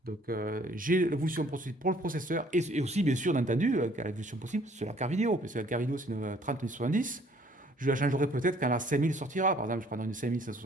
Donc j'ai l'évolution pour le processeur et aussi bien sûr entendu l'évolution possible sur la carte vidéo, parce que la carte vidéo c'est une 3070. Je la changerai peut-être quand la 5000 sortira, par exemple je prendrai une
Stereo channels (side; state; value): both; normal; correlation 0.59